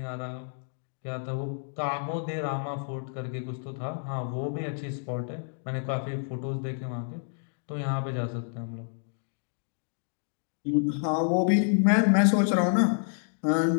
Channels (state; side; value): silent; right; digital silence